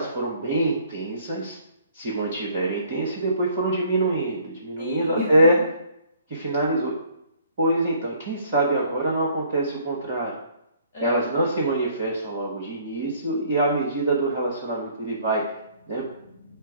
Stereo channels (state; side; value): inverted; both; correlation -0.60